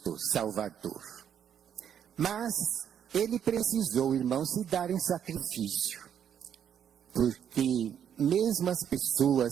Salvador. Mas ele precisou, irmãos, se dar em sacrifício, porque mesmo as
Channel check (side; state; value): left; quieter; 8.9 dB